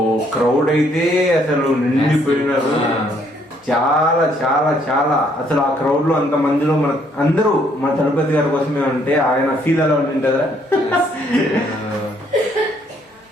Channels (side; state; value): both; normal; correlation 0.67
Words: క్రౌడ్ అయితే అసలు నిండిపోయినారు. చాలా చాలా చాలా అసలు ఆ క్రౌడ్ లో అంత మందిలో మన అందరూ మన తలపతి గారి కోసమే ఉంటే ఆయన ఫీల్ అలా ఉంటుందా.